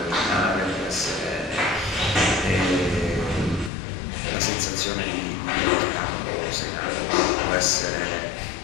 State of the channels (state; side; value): drops out; right; at 3.7 s